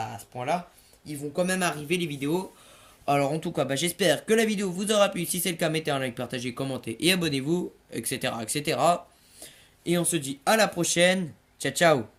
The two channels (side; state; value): both; identical; correlation 1.00